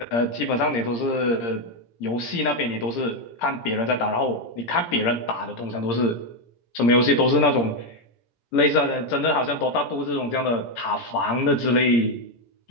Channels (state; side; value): late; right; 17 ms